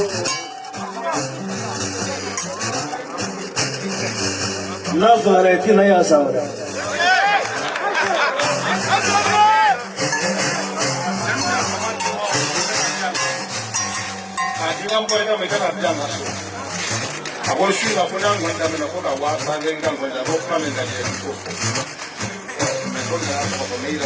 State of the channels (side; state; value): both; identical; correlation 1.00